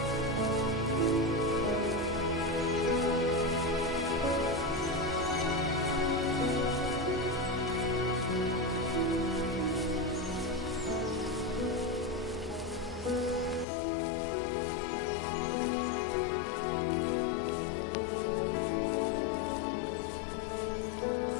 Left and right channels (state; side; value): drops out; right; at 13.7 s